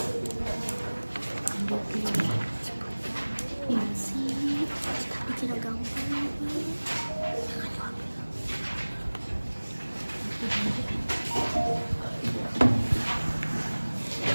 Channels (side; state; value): both; inverted; correlation -1.00